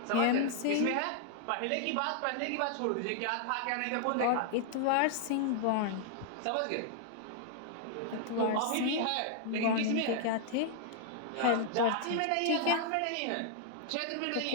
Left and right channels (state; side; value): different; both; correlation -0.01